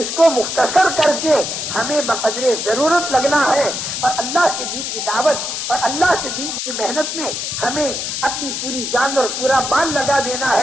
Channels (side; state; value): left; noise; hiss, 3 dB below the sound